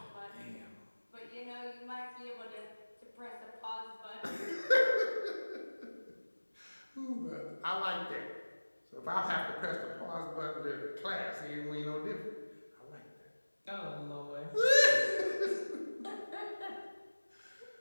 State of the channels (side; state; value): both; inverted; correlation -1.00